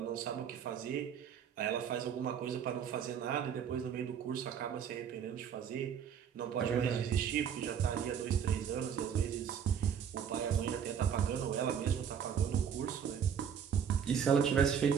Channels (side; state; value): left; quieter; 7.9 dB